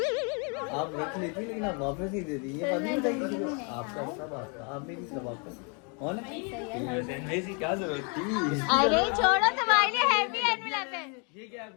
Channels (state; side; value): quieter; right; 36.1 dB